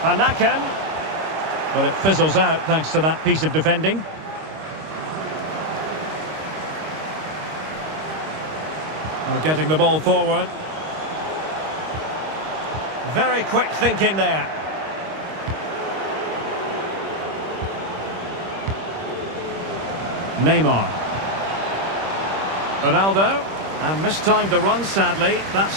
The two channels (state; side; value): late; left; 26 ms